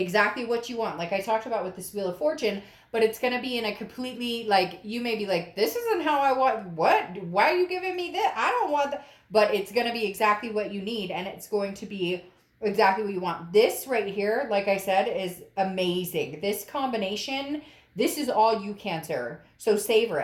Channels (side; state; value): both; identical; correlation 1.00